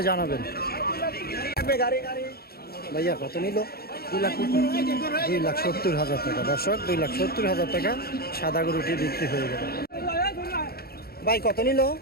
জানাবেন ভাইয়া কত নিল 2,70,000 টাকা দর্শক 2,70,000 টাকা সাদা গরুটি বিক্রি হয়ে গেল ভাই কত নিল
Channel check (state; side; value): late; right; 0.45 ms